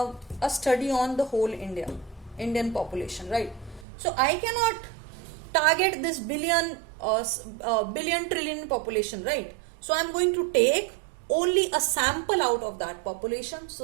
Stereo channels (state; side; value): drops out; left; at 3.9 s